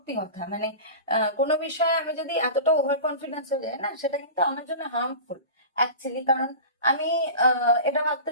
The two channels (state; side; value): inverted; both; correlation -0.33